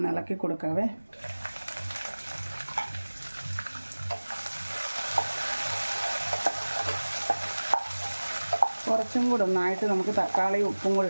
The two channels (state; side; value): inverted; both; correlation -1.00